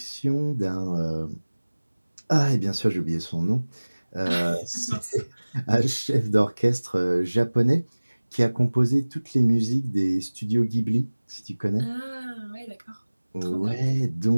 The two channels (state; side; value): inverted; both; correlation -1.00